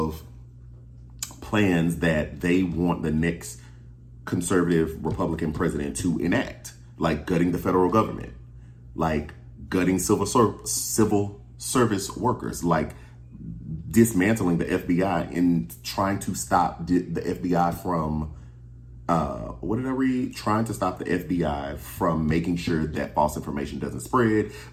plans that they want the next conservative Republican president to enact, like gutting the federal government, like gutting civil service workers, like dismantling the FBI and trying to stop the FBI from what did I read? Trying to stop the FBI from making sure that false information doesn't spread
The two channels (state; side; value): identical; both; correlation 1.00